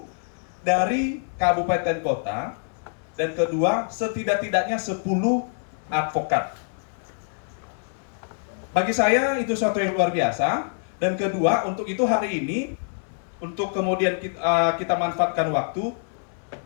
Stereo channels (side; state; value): right; silent; digital silence